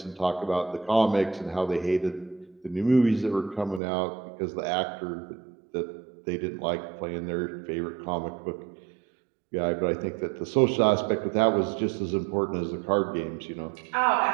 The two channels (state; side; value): drops out; left; at 3.8 s